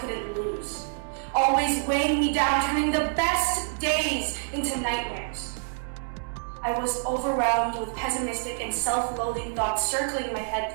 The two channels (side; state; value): left; silent; 60 dB below the other